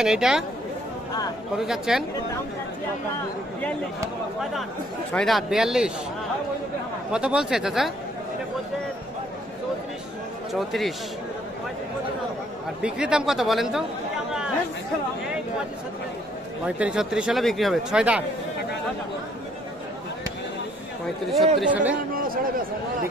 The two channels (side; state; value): both; normal; correlation 0.64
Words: এটা কত চাচ্ছেন? 6 দাঁত 42। কত বলছে চাচা? 34। আর বিক্রির দাম কত বলেন তো? 35-36 হলে বিক্রি হবে। 6 দাঁত 35-36 হলে